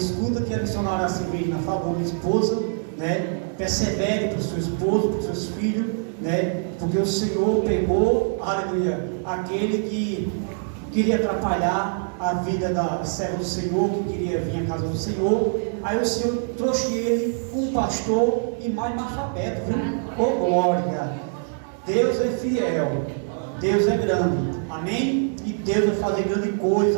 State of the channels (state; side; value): silent; left; digital silence